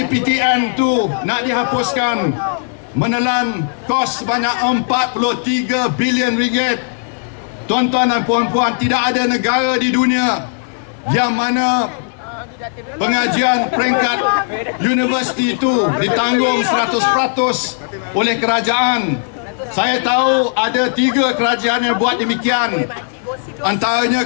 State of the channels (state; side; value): silent; right; digital silence